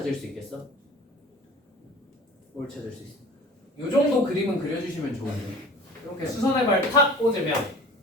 수 있겠어? 뭘 찾을 수 있어? 요 정도 그림은 그려주시면 좋은데 이렇게 수선의 발 탁 꽂으면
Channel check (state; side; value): normal; both; correlation 0.43